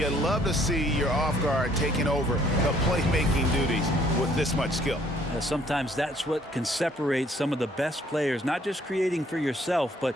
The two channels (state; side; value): normal; both; correlation 0.62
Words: love to see your off guard taking over the playmaking duties with this much skill. Sometimes that's what can separate some of the best players, not just creating for yourself, but